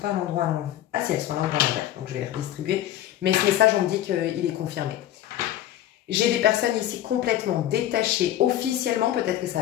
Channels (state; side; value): quieter; right; 12.6 dB